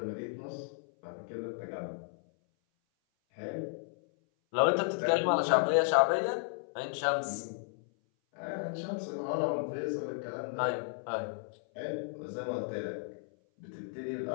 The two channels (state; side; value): silent; right; 55 dB below the other